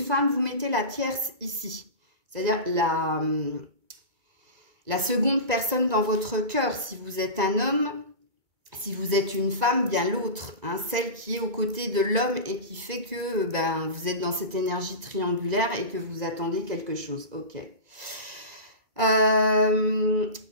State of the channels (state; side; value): late; left; 2.2 ms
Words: femme, vous mettez la tierce ici. C'est-à-dire la seconde personne dans votre cœur. Si vous êtes un homme, si vous êtes une femme, bien l'autre. Hein, celle qui est aux côtés de l'homme et qui fait que vous êtes dans cette énergie triangulaire et que vous attendez quelque chose. Ok.